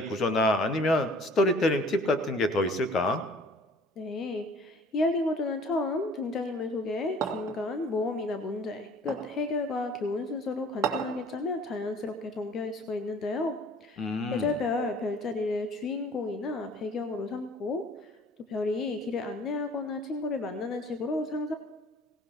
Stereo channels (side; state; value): both; normal; correlation 0.51